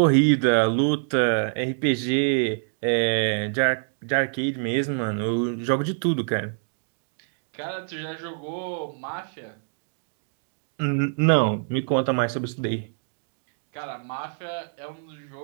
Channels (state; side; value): silent; left; digital silence